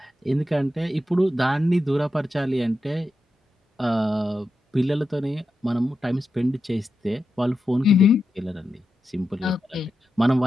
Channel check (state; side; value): normal; both; correlation 0.89